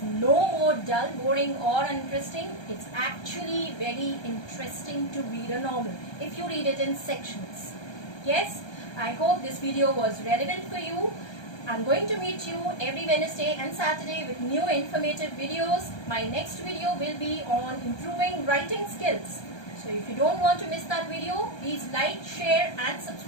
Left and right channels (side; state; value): right; late; 1.3 ms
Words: no more dull, boring or uninteresting. It's actually very interesting to read a novel if you read it in sections. Yes, I hope this video was relevant for you. I'm going to meet you every Wednesday and Saturday with new informative videos. My next video will be on improving writing skills. So if you don't want to miss that video, please like, share and